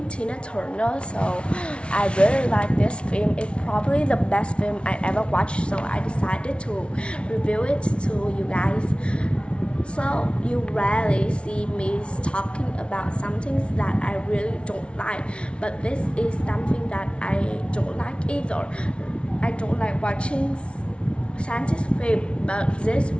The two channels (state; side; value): late; right; 0.059 ms